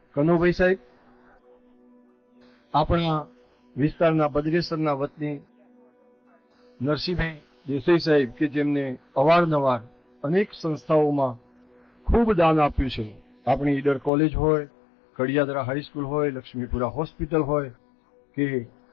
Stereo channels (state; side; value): drops out; right; at 14.1 s